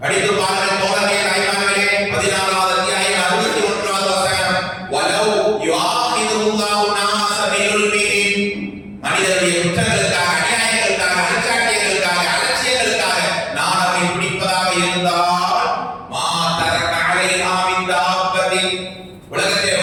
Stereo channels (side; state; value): both; identical; correlation 1.00